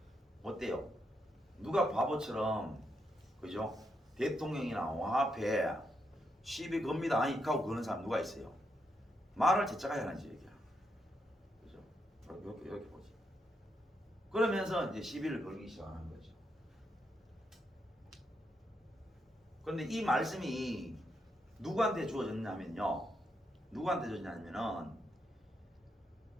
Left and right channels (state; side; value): normal; both; correlation 0.81